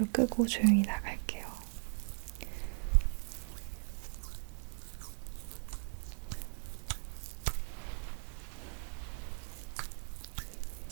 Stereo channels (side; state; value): left; silent; digital silence